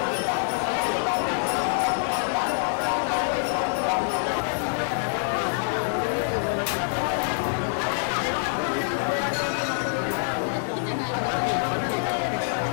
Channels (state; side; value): silent; right; 55 dB below the other